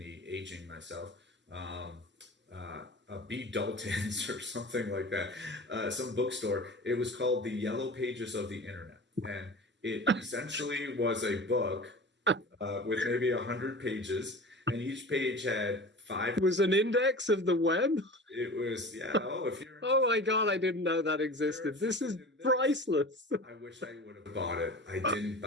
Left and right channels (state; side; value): normal; both; correlation 0.36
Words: aging myself, a B. Dalton's or something like that, some bookstore. It was called The Yellow Pages of the Internet, and it essentially was a book with maybe 100 pages, and each page had 5. It was an index of the web? It was, yeah. Oh, if you're. Oh my God, I didn't know that existed. This is priceless. I wish I would have bought it. I didn't